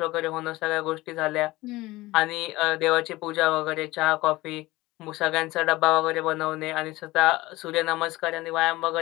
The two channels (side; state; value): right; quieter; 19.3 dB